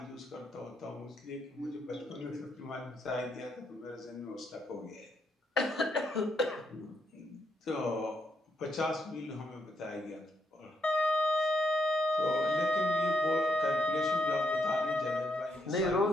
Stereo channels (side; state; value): both; normal; correlation 0.79